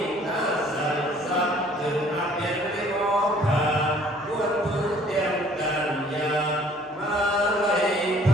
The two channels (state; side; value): normal; both; correlation 0.56